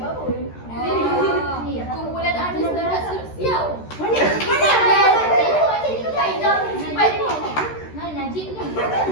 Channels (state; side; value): late; right; 13 ms